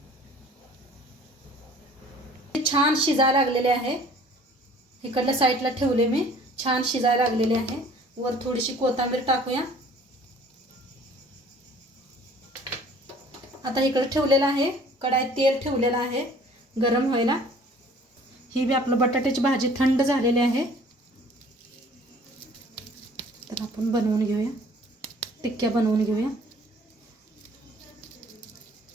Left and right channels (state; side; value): normal; both; correlation 0.52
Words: छान शिजायला लागलेले आहे. इकडल्या साईडला ठेवले मी. छान शिजायला लागलेले आहे. वर थोडीशी कोथिंबीर टाकूया. आता इकडे ठेवलेलं आहे. कढाईत तेल ठेवलेलं आहे गरम व्हायला. ही बी आपलं बटाट्याची भाजी थंड झालेली आहे. तर आपण बनवून घेऊया. टिक्क्या बनवून घेऊया.